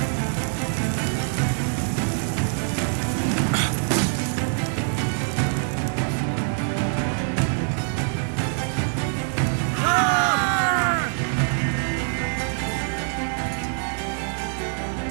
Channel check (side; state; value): left; silent; 55 dB below the other